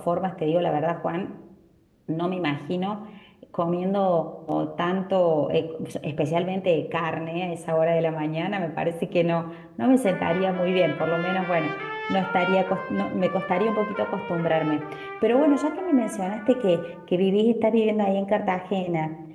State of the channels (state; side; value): identical; both; correlation 1.00